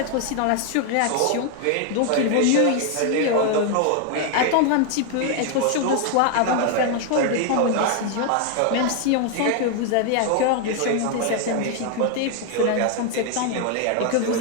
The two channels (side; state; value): both; different; correlation 0.00